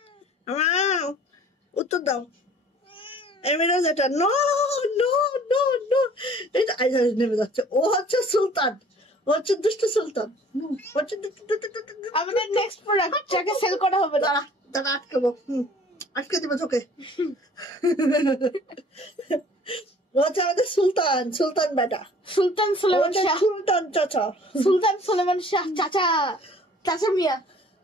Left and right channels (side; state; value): both; normal; correlation 0.52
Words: উত্তর দাও এমিরাজ। এটা নো নো নো নো, এটা নেমে যাচ্ছে। ও হচ্ছে সুলতান, ও হচ্ছে দুষ্টু সুলতান। আমাদের নেক্সট প্রোডাক্ট যাকে সেল করা হবে। দাঁড়া দাঁড়া, আটকাবো, আটকে দিবে তোকে। ও হচ্ছে আমাদের সুলতান, সুলতান বেটা, সুলতান সুলেমান শাহ। সুলতান চাচা, সুলতান সুলেমান শাহ চাচা, চাচা মিয়া।